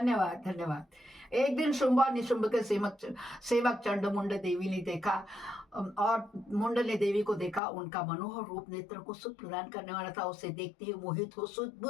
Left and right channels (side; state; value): right; drops out; at 7.6 s